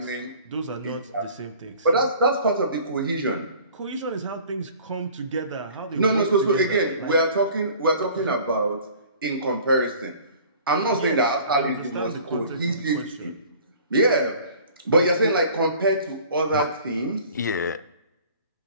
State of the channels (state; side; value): inverted; both; correlation -0.49